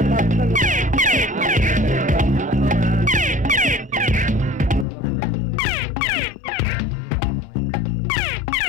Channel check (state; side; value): drops out; right; at 4.9 s